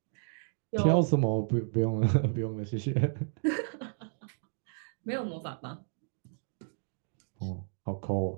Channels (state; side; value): silent; left; digital silence